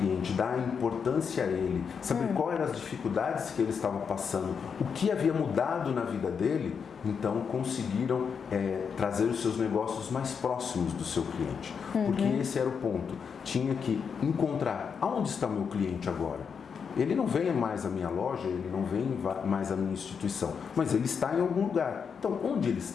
dar importância a ele, saber quais eram as dificuldades que ele estava passando, o que havia mudado na vida dele, então conseguiram trazer os seus negócios mais próximos do seu cliente. Porque esse era o ponto. Tinha que encontrar aonde está o meu cliente agora. Ele não vem mais à minha loja, ele não vem mais à minha instituição, mas ele está em algum lugar. Então, onde ele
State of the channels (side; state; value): right; quieter; 6.4 dB